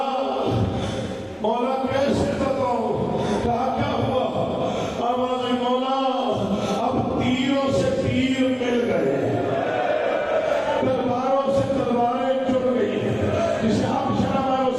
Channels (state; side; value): identical; both; correlation 1.00